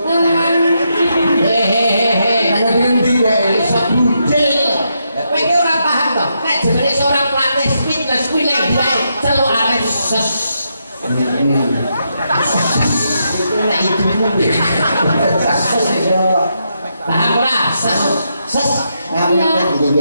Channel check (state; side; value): inverted; both; correlation -0.81